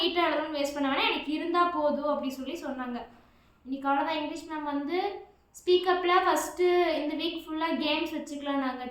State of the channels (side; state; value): both; identical; correlation 1.00